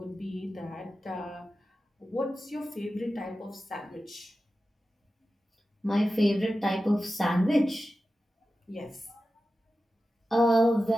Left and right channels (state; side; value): normal; both; correlation 0.93